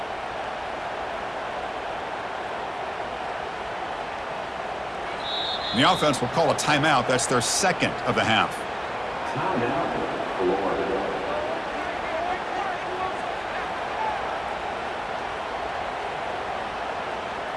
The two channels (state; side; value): identical; both; correlation 1.00